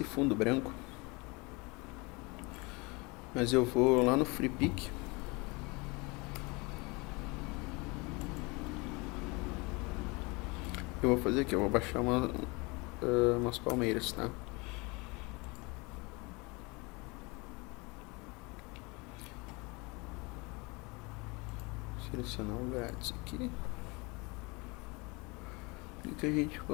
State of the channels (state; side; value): quieter; right; 27.0 dB